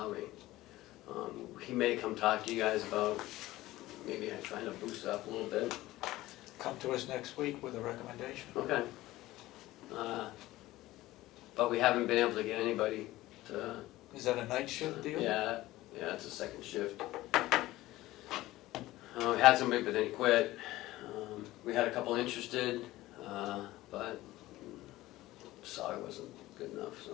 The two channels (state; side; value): quieter; right; 17.1 dB